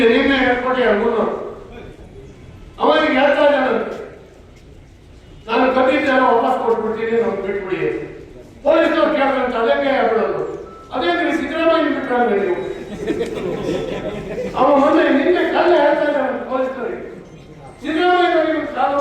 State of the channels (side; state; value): both; identical; correlation 1.00